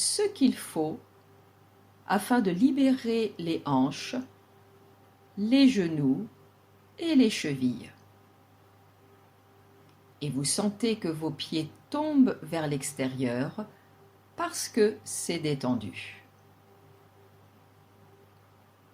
qu'il faut afin de libérer les hanches, les genoux et les chevilles. Et vous sentez que vos pieds tombent vers l'extérieur parce que c'est détendu.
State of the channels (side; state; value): both; identical; correlation 1.00